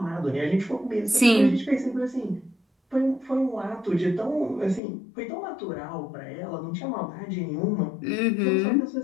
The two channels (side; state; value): right; drops out; at 4.8 s